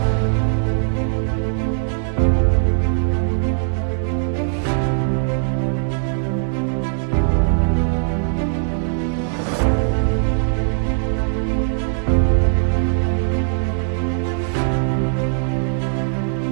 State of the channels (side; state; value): left; silent; 61 dB below the other